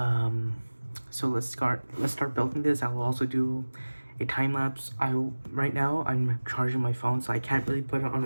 so let's start building this. I will also do a time lapse. Right now I'm charging my phone, so I can't really put it on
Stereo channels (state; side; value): inverted; both; correlation -1.00